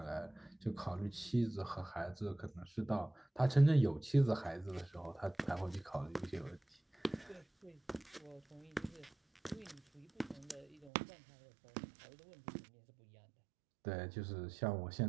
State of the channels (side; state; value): left; drops out; at 10.9 s